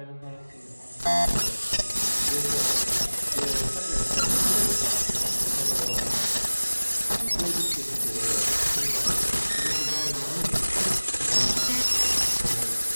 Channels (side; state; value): both; inverted; correlation -1.00